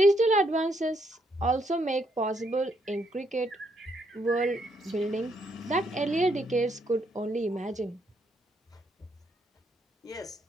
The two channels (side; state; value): both; normal; correlation 0.74